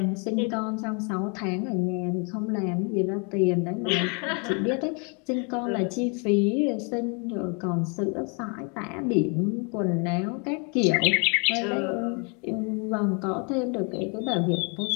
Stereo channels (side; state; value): right; quieter; 35.6 dB